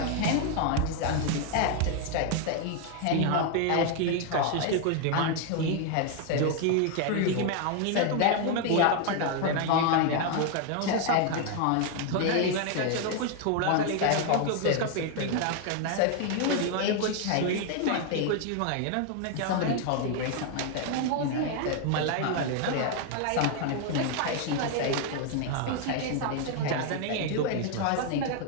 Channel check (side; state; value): both; different; correlation 0.01